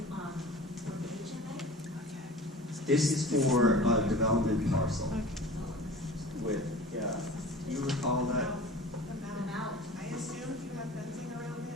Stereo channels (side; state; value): both; normal; correlation 0.40